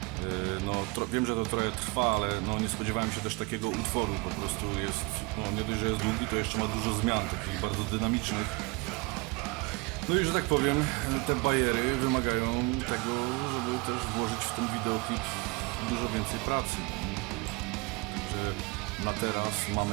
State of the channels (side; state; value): left; quieter; 27.1 dB